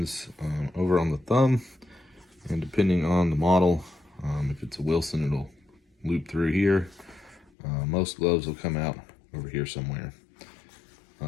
over on the thumb. And depending on the model, if it's a Wilson, it'll loop through here. Most gloves will come out over here somewhere.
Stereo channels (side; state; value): right; drops out; at 7.5 s